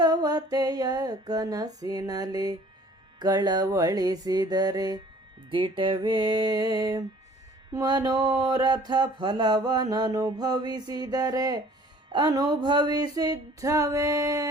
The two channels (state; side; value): normal; both; correlation 0.52